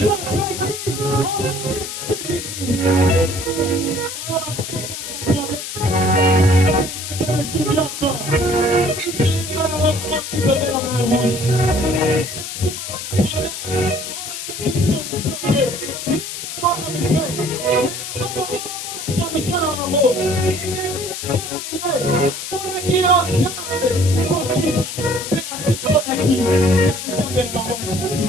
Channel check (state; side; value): noise; left; hiss, 7 dB below the sound